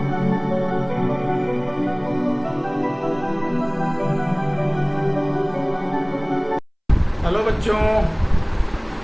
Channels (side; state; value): both; identical; correlation 1.00